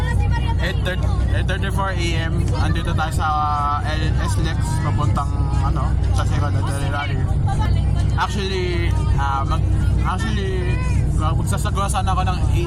8:34 AM. Andito tayo sa LS Lex papuntang sa Second Rally. Actually, magsasagawa sana ako ng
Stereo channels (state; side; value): identical; both; correlation 1.00